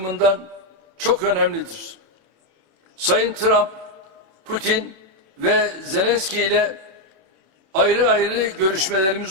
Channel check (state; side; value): late; left; 27 ms